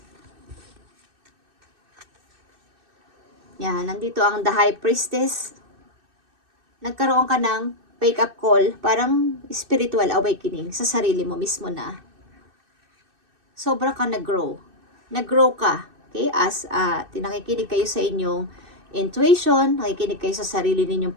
Yan, nandito ang The High Priestess. Nagkaroon ka ng wake-up call, parang spiritual awakening sa sarili mo mismo na. Sobra ka nag-grow. Nag-grow ka. Okay? As nakikinig kayo sa inyong intuition, nakikinig kayo sa sarili ninyong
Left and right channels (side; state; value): left; late; 2.6 ms